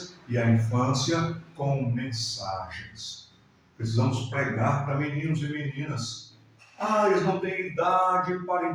e à infância com mensagens. Precisamos pregar para meninos e meninas. Eles não têm idade para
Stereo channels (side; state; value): both; identical; correlation 1.00